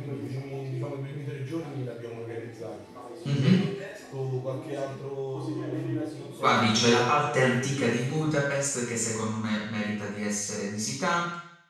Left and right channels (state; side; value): identical; both; correlation 1.00